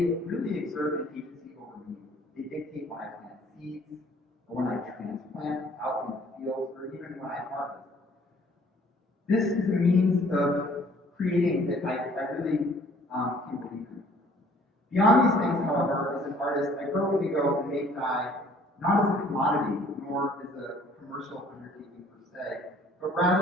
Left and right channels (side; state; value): both; normal; correlation 0.56